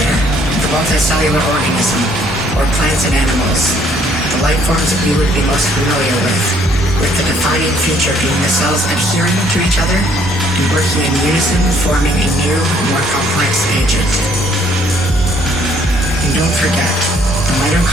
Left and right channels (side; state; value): both; normal; correlation 0.64